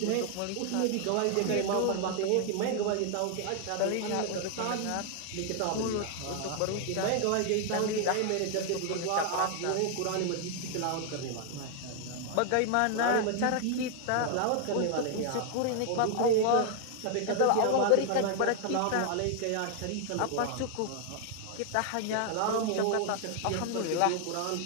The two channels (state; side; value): different; both; correlation 0.00